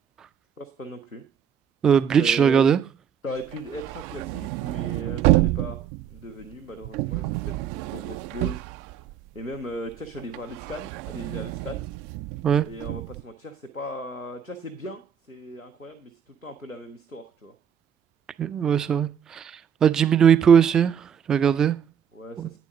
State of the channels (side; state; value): left; quieter; 8.1 dB